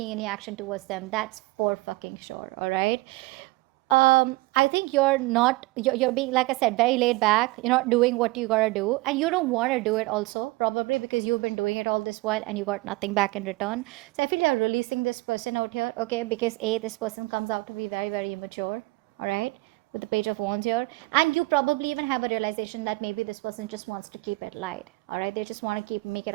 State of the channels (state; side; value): quieter; left; 22.0 dB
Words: any action towards them. That's for fucking sure. All right. I think you're being, like I said, very laid back. You're not doing what you gotta do, and you don't want to do it also, probably because you've been doing it all this while and you got nothing back in return. So I feel you're releasing this person out here, okay? Because this person comes out to be very, very immature, all right? With the Page of Wands here, and you probably even have a realization that maybe this person just wants to keep it light, all right? They just want to make it